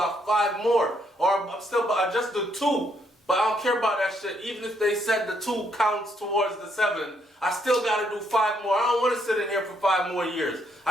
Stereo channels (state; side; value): normal; both; correlation 0.73